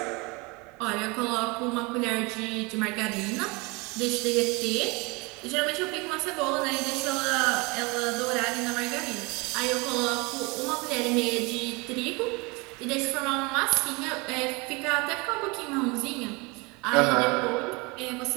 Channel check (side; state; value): left; quieter; 26.9 dB